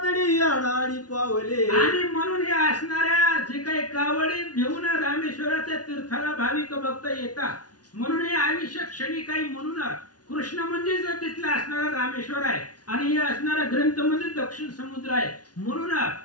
आडाडी पावले. आणि म्हणून हे असणाऱ्या जे काही कावडी घेऊन रामेश्वराच्या तीर्थाला भाविक भक्त येतात म्हणून हे आयुष्य क्षणी काही म्हणून कृष्ण म्हणजे तिथला असणारा रामेश्वर आहे आणि हे असणारा ग्रंथ म्हणजे दक्षिण समुद्र आहे. म्हणून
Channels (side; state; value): right; late; 0.69 ms